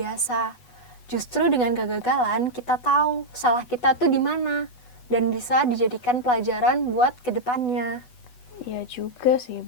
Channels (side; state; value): right; late; 8.1 ms